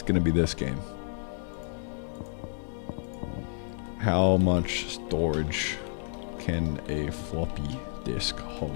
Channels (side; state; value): right; silent; digital silence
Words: gonna be this game. How much storage can a floppy disk